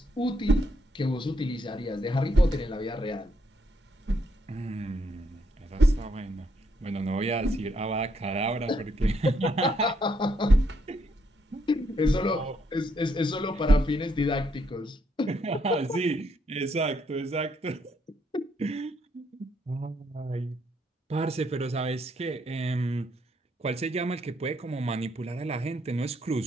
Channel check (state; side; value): normal; both; correlation 0.74